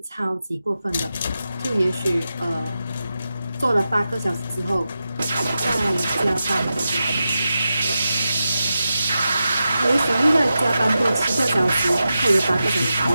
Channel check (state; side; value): inverted; both; correlation -0.90